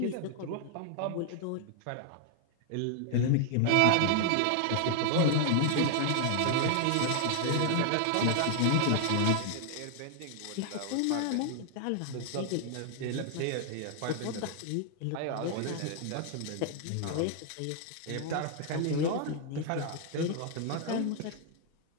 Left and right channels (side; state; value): both; different; correlation 0.00